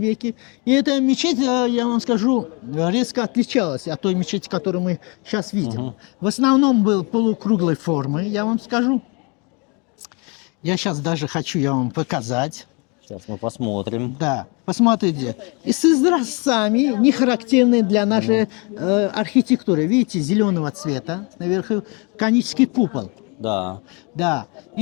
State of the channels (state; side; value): quieter; right; 31.4 dB